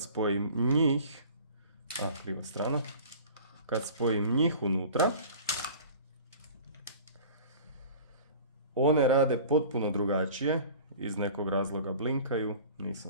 spojim njih, kriva strana, kad spojim njih unutra, one rade potpuno drugačije, iz nekog razloga blinkaju,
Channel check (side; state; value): both; inverted; correlation -0.42